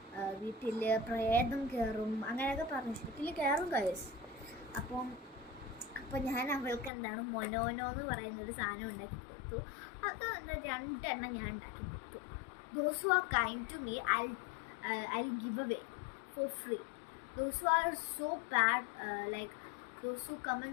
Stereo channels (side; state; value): right; drops out; at 6.9 s